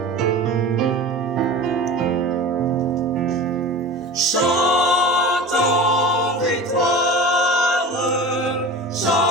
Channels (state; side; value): normal; both; correlation 0.34